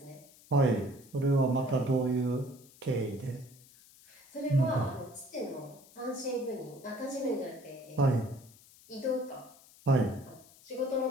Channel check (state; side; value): noise; left; hiss, 24 dB below the sound